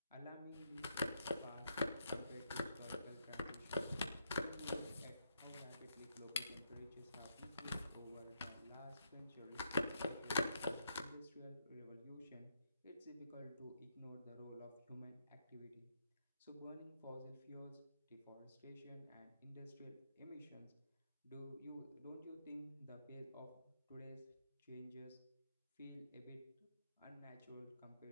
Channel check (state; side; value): inverted; both; correlation -0.78